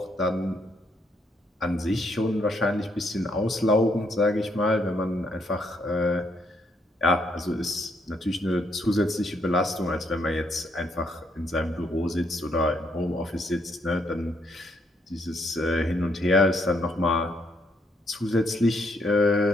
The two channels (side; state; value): both; normal; correlation 0.73